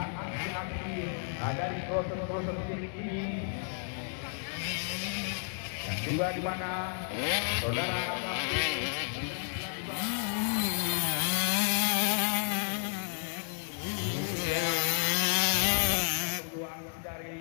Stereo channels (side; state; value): right; silent; 56 dB below the other